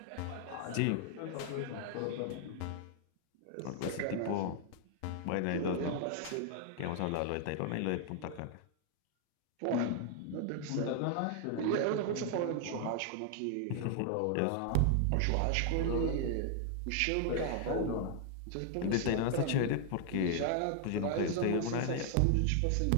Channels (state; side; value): different; both; correlation 0.00